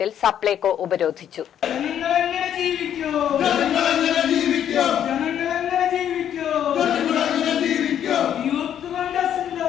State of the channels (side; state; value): right; quieter; 9.8 dB